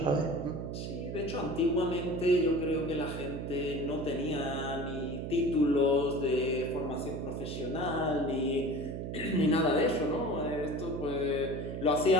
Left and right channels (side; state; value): right; noise; hum, 5 dB below the sound